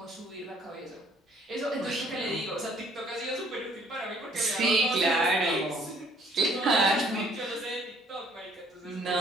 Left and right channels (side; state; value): both; normal; correlation 0.61